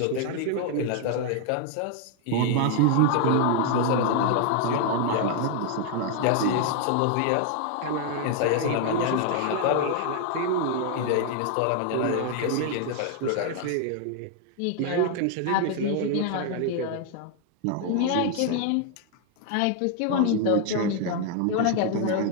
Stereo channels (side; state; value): both; different; correlation 0.00